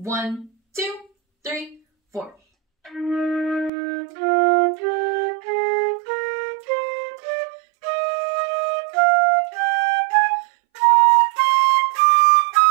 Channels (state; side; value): drops out; left; at 3.7 s